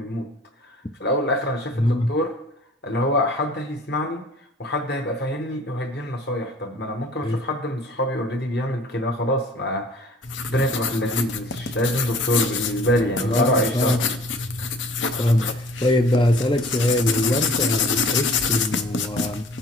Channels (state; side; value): normal; both; correlation 0.50